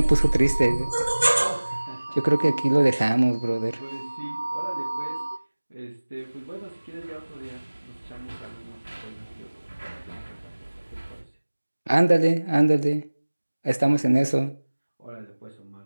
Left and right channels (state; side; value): inverted; both; correlation -1.00